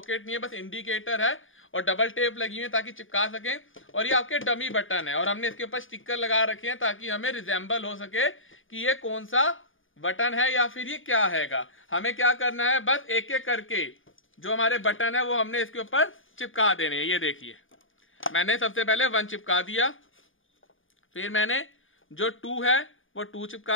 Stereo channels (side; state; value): right; late; 0.58 ms